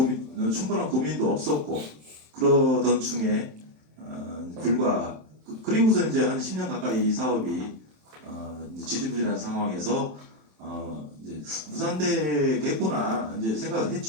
충분한 고민도 없었고 그러던 중에 그리고서 이제 한 10년 가까이 이 사업이 지지부진한 상황에서 이제 무산되겠구나 이제 생각을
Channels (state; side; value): late; left; 27 ms